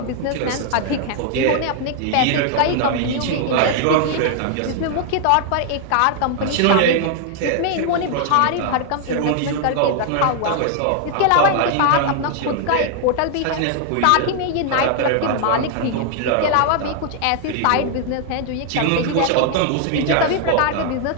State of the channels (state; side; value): different; both; correlation 0.00